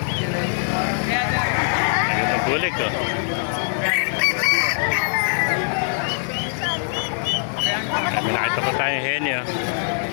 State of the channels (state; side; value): silent; right; digital silence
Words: Ayun ang bulik. Oh. Kami nakita pa tayong heni. Oh.